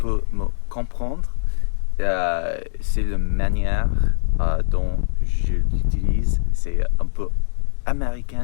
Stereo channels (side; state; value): right; silent; digital silence